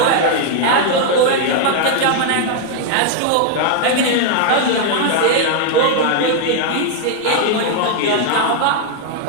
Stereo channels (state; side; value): different; both; correlation 0.00